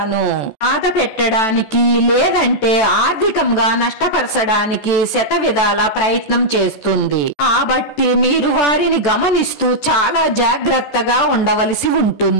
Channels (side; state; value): right; late; 14 ms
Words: బాధ పెట్టడానికి లేదంటే ఆర్థికంగా నష్టపరచడానికి శతవిధాల ప్రయత్నం చేస్తుంది. కాబట్టి మీరు వారిని గమనిస్తూ చాలా జాగ్రత్తగా ఉండవలసి